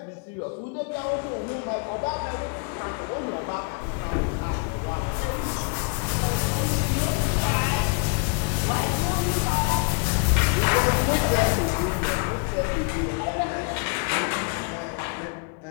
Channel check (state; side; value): quieter; right; 33.6 dB